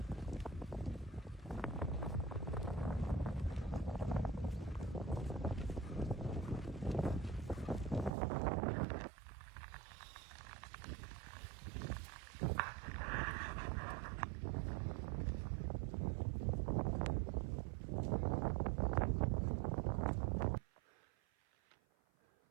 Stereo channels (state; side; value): drops out; left; at 8.1 s